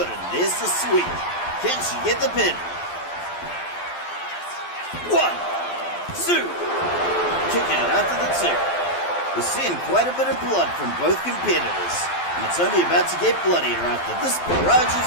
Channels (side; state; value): right; late; 12 ms